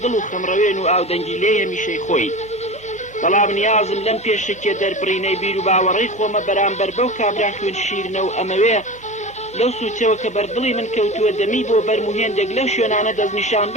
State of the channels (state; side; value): normal; both; correlation 0.30